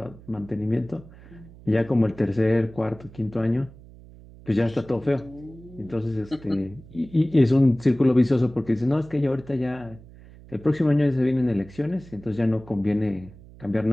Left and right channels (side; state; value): right; noise; hum, 20 dB below the sound